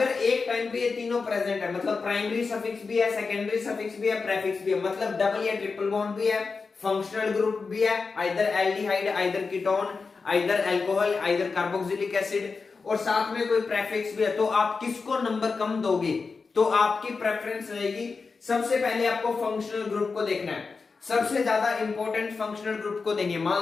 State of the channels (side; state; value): right; quieter; 4.6 dB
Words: एक टाइम पे ये तीनों प्रेजेंट है, मतलब प्राइमरी सफिक्स भी है, सेकेंडरी सफिक्स भी है, प्रेफिक्स भी है, मतलब डबल या ट्रिपल बॉन्ड भी है, फंक्शनल ग्रुप भी है, either aldehyde, either ketone, either alcohol, either carboxylic acid, और साथ में कोई प्रेफिक्स भी है, तो आप किसको नंबर कम दोगे? तो आपकी प्रेफरेंस रहेगी, सबसे पहले आपको फंक्शनल ग्रुप को देखना है, सबसे ज्यादा इंपॉर्टेंट फंक्शनल ग्रुप को देंगे।